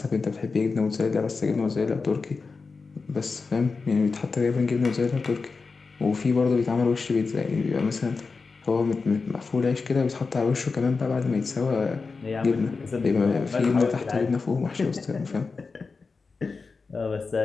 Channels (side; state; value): right; quieter; 4.5 dB